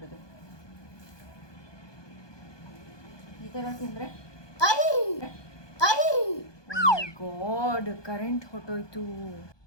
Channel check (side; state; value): right; late; 1.2 ms